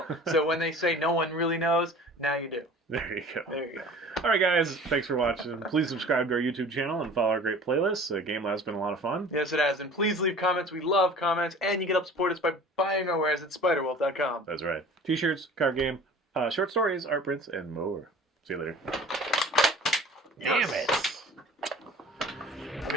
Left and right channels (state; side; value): normal; both; correlation 0.44